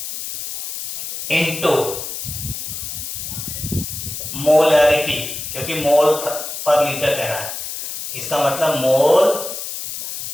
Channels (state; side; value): noise; left; hiss, 7 dB below the sound